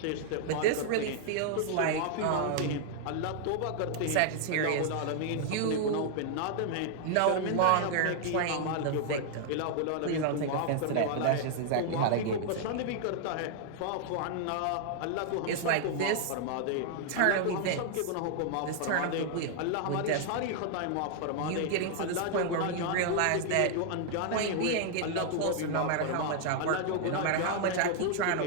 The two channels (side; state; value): both; different; correlation 0.00